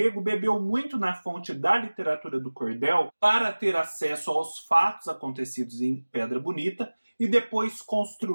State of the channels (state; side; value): inverted; both; correlation -1.00